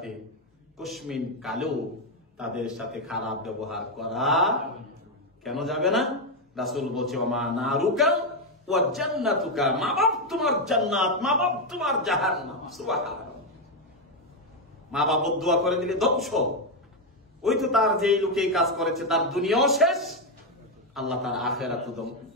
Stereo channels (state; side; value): normal; both; correlation 0.05